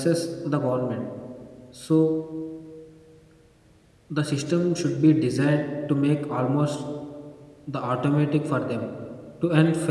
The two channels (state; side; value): identical; both; correlation 1.00